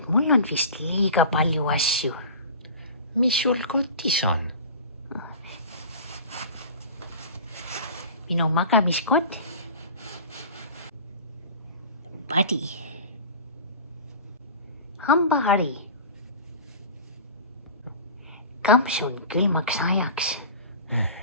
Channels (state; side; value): inverted; both; correlation -0.37